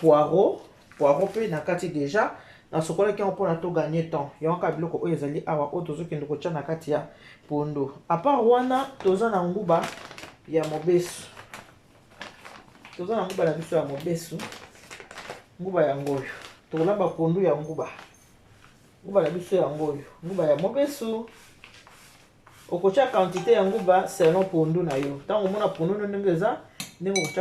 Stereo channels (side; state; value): both; identical; correlation 1.00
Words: pe na kati deja. Na sokola ki yango mpona to gagner temps. Yango ka biloko oyo ezali awa oyo tozokende kotia na kati ya pondu. A part wana toza na nguba ya mobesu. Toza na nguba na biso ya mobesu. Nguba ya ngoyo. Tokolamba pondu ya nguba. Nguba na biso ya ngoyo. Nguba ya mobesu. Okotia quantité ya nguba selon pondu na yo. Tango mona pondu ndenge eza ndenge